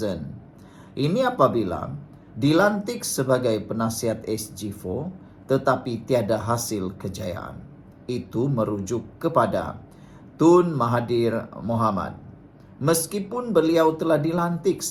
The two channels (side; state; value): both; identical; correlation 1.00